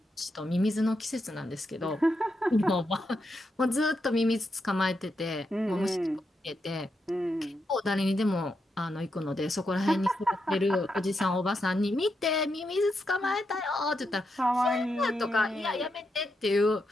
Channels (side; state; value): both; normal; correlation 0.84